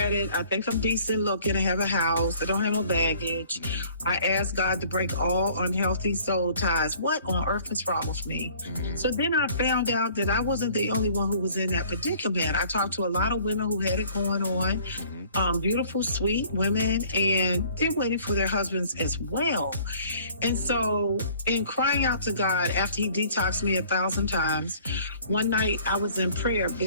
I think I'm decent looking. I have a house. I don't have no baggage. I asked God to break all unhealthy soul ties. What on earth is wrong with me? So then I found out that I wasn't the only one who was in that predicament. I talked to a lot of women who had it going on, beautiful, sweet women, and they're waiting for their husbands as well. And so in crying out to God after he detoxed me 1,000 times, one night I was in prayer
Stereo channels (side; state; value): both; inverted; correlation -0.54